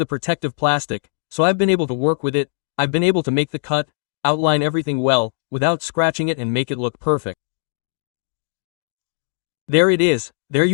protective plastic, so I've been able to work with it, I've been able to make the cut, outline everything well, without scratching it and make it look perfect. There it is, there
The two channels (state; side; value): silent; right; digital silence